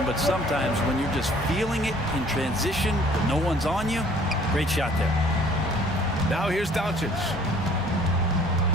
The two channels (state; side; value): normal; both; correlation 0.55